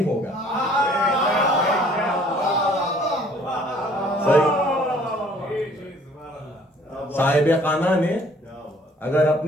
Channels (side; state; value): both; normal; correlation 0.57